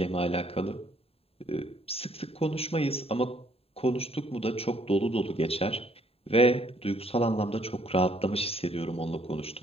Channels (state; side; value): late; right; 0.28 ms